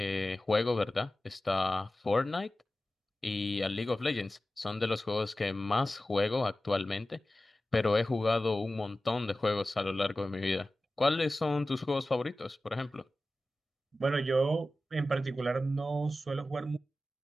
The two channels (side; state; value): both; normal; correlation 0.95